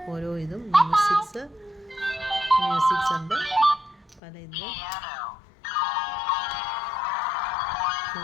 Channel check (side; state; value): right; drops out; at 4.2 s